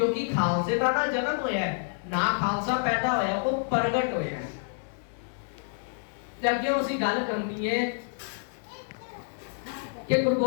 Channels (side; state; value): right; silent; digital silence